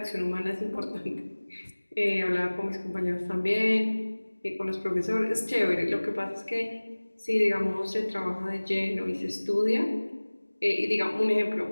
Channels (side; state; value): both; inverted; correlation -1.00